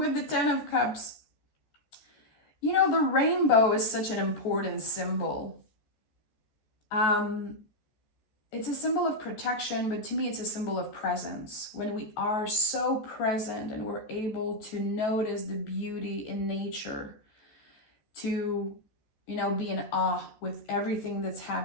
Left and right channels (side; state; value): right; late; 14 ms